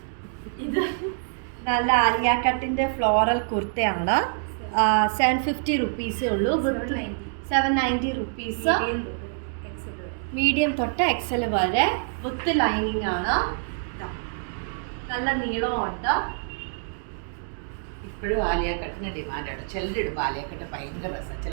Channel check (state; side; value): silent; left; digital silence